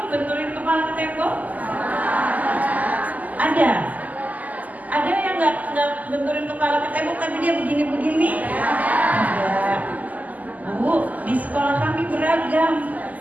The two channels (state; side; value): late; left; 0.078 ms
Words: benturin kepala ke tembok? Ada. Ada yang nggak benturin kepala ke tembok tapi dia begini-begini? Ada. Bu, di sekolah kami beragam.